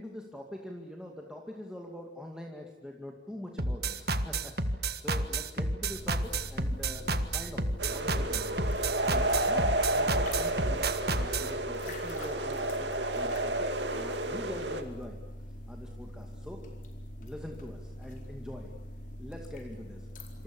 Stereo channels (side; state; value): both; normal; correlation 0.15